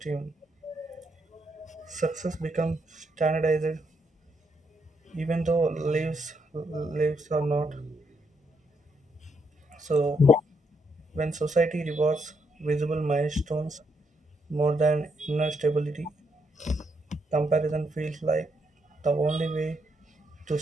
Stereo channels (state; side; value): normal; both; correlation 0.77